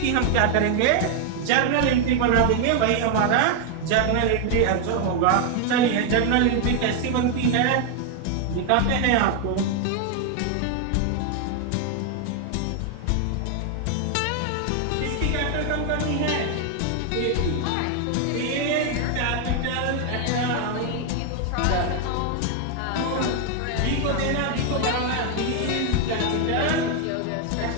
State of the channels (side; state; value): both; different; correlation 0.00